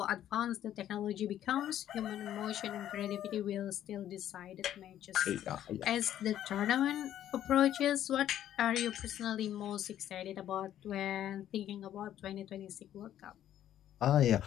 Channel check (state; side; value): quieter; right; 11.5 dB